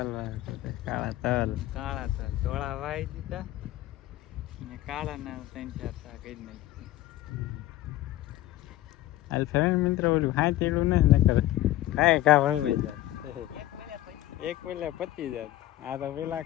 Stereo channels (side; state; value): right; quieter; 15.2 dB